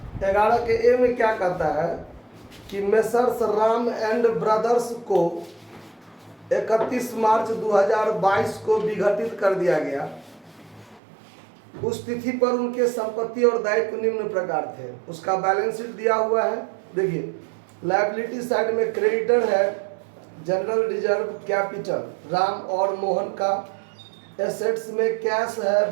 11 के ए में क्या कहता है कि मेसर्स राम एंड ब्रदर्स को 31 मार्च 2022 को विघटित कर दिया गया। उस तिथि पर उनके संपत्ति और दायित्व निम्न प्रकार थे। उसका बैलेंस शीट दिया हुआ है। देखिए लायबिलिटी साइड में क्रेडिटर है जनरल रिजर्व कैपिटल राम और मोहन का। एसेट्स में कैश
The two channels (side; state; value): left; drops out; at 11.0 s